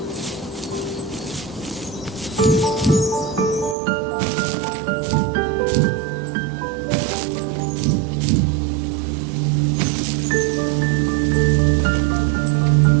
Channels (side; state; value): left; drops out; at 3.8 s